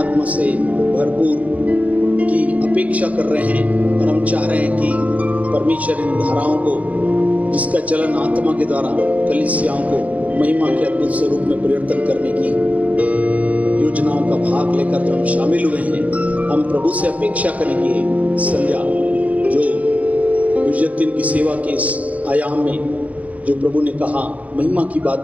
से भरपूर की अपेक्षा कर रहे हैं, और हम चाह रहे हैं कि परमेश्वर इन धाराओं को, जिसका चलन आत्मा के द्वारा कलीसियाओं को महिमा के अद्भुत स्वरूप में परिवर्तन करने की योजनाओं का भाग लेकर जो हम शामिल हुए हैं, हम प्रभु से अपेक्षा करेंगे संध्या जो गुजर दिन की सेवा के इस आयाम में जो प्रभु ने कहा महिमा की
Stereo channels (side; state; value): left; late; 0.070 ms